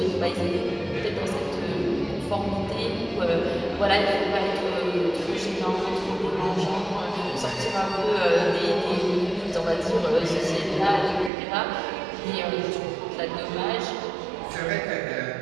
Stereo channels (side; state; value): left; drops out; at 11.3 s